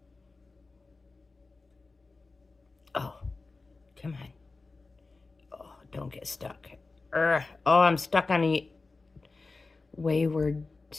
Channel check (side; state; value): right; quieter; 3.7 dB